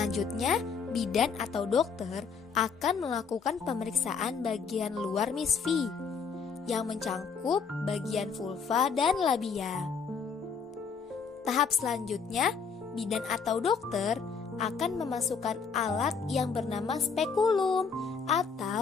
bidan atau dokter akan melakukan pemeriksaan bagian luar misfi yang mencangkup bagian vulva dan labia. Tahap selanjutnya, bidan atau dokter akan memasukkan alat yang bernama spekulum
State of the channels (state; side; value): quieter; right; 5.7 dB